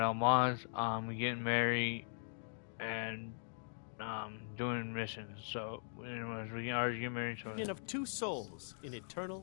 mods, getting married, and, doing missions. So, anyways, we can already get married, so... Union of two souls in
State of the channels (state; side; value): silent; right; digital silence